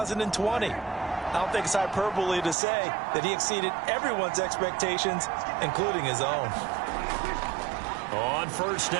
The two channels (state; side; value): drops out; left; at 2.6 s